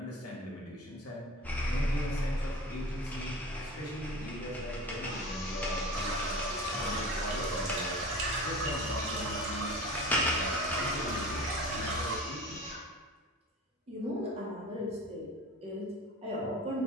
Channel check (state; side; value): normal; both; correlation 0.36